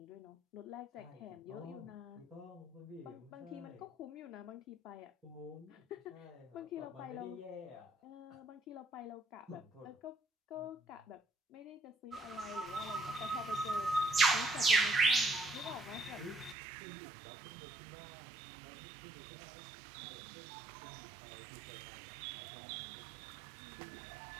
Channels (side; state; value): left; drops out; at 16.6 s